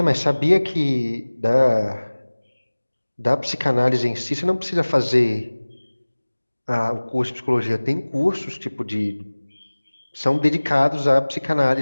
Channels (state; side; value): inverted; both; correlation -1.00